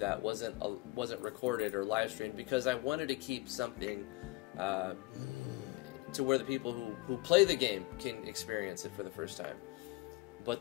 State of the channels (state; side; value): quieter; right; 21.6 dB